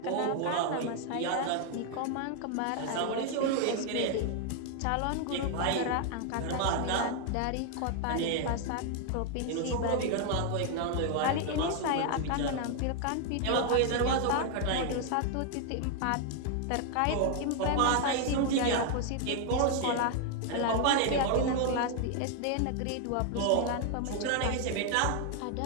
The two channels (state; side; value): different; both; correlation 0.00